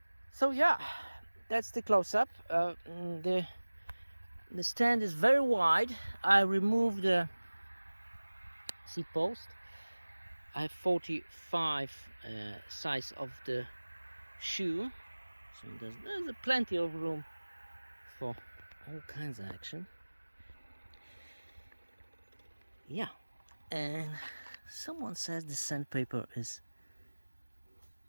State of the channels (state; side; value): inverted; both; correlation -1.00